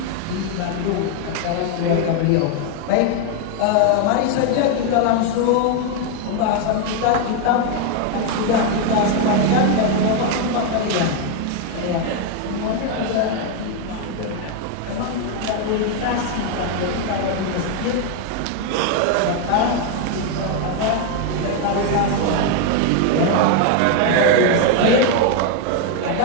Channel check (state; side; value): different; both; correlation 0.01